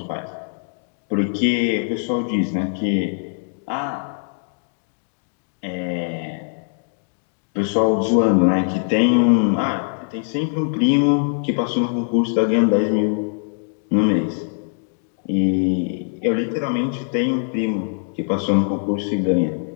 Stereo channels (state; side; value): silent; right; digital silence